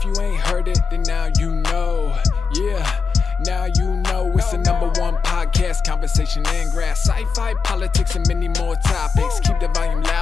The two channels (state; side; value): quieter; right; 5.3 dB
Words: you ain't heard it, then now you know. Yeah, now you know. It's the #1 podcast, conversation and grass, sci-fi, politics, and many more topics. Keep the volume